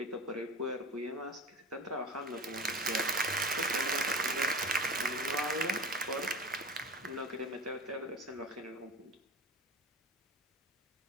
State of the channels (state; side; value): normal; both; correlation 0.32